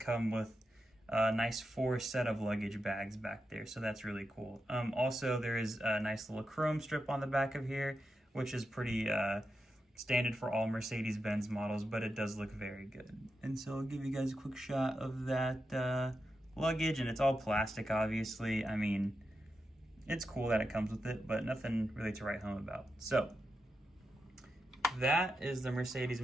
with a nice 4 set of luggage bags back there, so that's really cool. Also, there is a nice little chrome strip on the back of here, which is pretty standard for all Mercedes-Benz models, but it does look very good. And so I'll give you guys a quick shot of that luggage, and it's all plastic, obviously. I mean, it's cool that it comes with it, but nothing really to write home about. So that is the Mercedes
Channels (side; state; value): both; normal; correlation 0.88